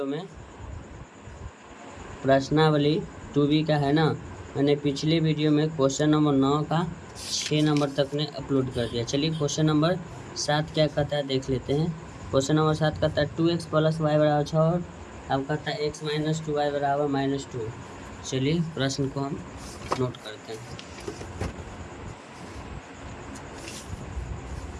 में प्रश्नावली 2B का है ना, मैंने पिछले वीडियो में क्वेश्चन नंबर 9 का 6 नंबर तक ने अपलोड कर दिया। चलिए क्वेश्चन नंबर 7 क्या कहता है देख लेते हैं। क्वेश्चन नंबर 7 कहता है 2x + y = 6 और अब कहता है x - 2y = -2। चलिए प्रश्न को हम नोट करते हैं।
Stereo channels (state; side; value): identical; both; correlation 1.00